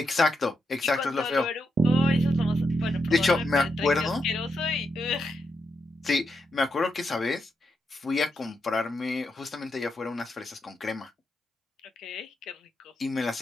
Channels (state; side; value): normal; both; correlation 0.83